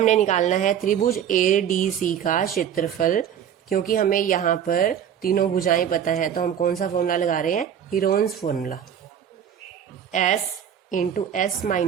निकालना है त्रिभुज ADC का क्षेत्रफल। क्योंकि हमें यहाँ पर तीनों भुजाएं पता है तो हम कौन सा फॉर्मूला लगा रहे हैं? Heron's formula. S into S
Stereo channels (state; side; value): quieter; left; 9.0 dB